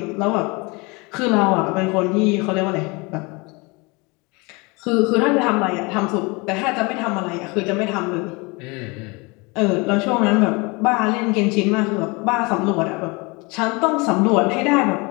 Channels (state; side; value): quieter; right; 27.2 dB